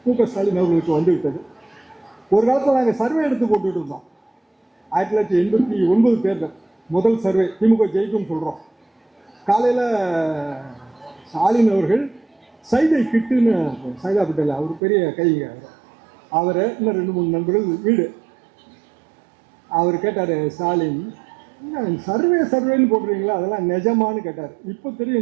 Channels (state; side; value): drops out; left; at 14.8 s